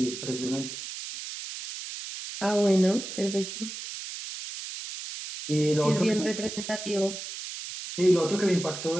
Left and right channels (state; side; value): noise; right; hiss, 9 dB below the sound